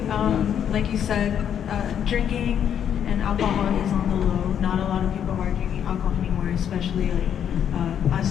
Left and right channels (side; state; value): right; quieter; 9.0 dB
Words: like you said, drinking and alcohol is on the low. Not a lot of people are drinking alcohol anymore, especially like